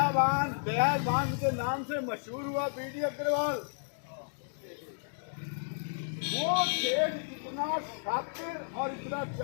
के नाम से मशहूर हुआ, बीडी अग्रवाल। वो सेठ इतना शातिर और इतना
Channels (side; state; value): right; silent; digital silence